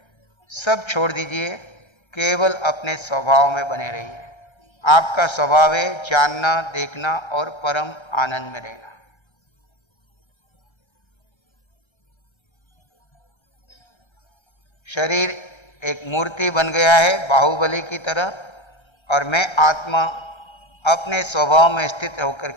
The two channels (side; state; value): right; late; 1.3 ms